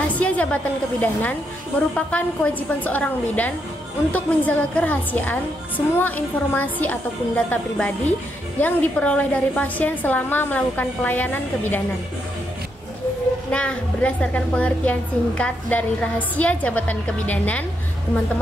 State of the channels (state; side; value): normal; both; correlation 0.79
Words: jabatan kebidanan merupakan kewajiban seorang bidan untuk menjaga kerahasiaan semua informasi ataupun data pribadi yang diperoleh dari pasien selama melakukan pelayanan kebidanan. Nah, berdasarkan pengertian singkat dari rahasia jabatan kebidanan,